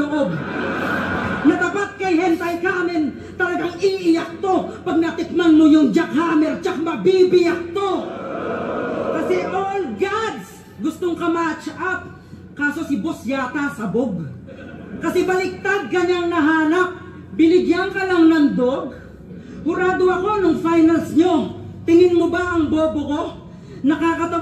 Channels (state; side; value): identical; both; correlation 1.00